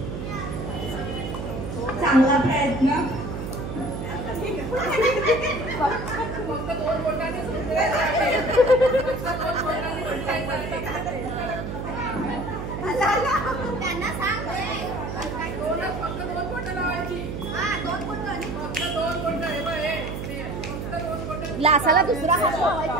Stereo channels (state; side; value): noise; right; hum, 6 dB below the sound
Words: चांगला प्रयत्न. ग्लासाला दुसरा हात